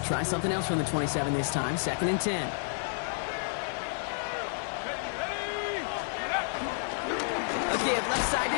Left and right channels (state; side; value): silent; right; digital silence